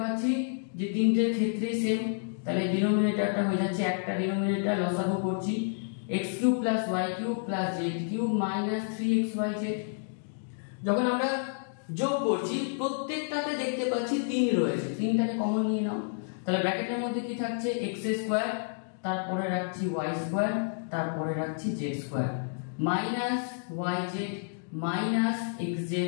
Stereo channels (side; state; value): right; silent; digital silence